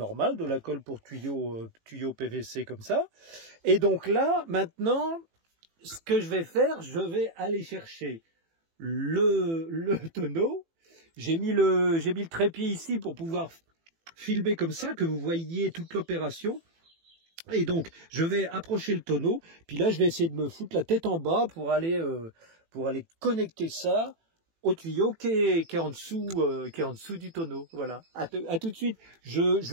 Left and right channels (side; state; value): left; late; 18 ms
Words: de la colle pour tuyau PVC comme ça. Et donc là, maintenant, ce que je vais faire, je vais aller chercher le tonneau. J'ai mis le trépied ici pour pouvoir filmer comme ça, que vous voyez toute l'opération. Et donc, je vais approcher le tonneau, puis là, je vais essayer de me foutre la tête en bas pour aller connecter ça au tuyau qui est en dessous du tonneau. Voilà. À tout de suite.